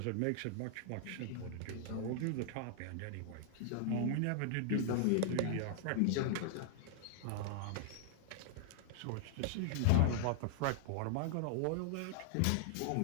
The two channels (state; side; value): different; both; correlation -0.01